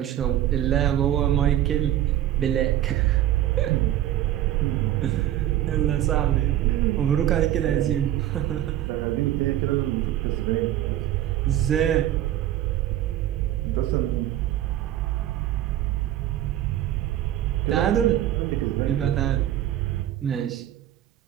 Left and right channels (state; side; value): quieter; left; 12.7 dB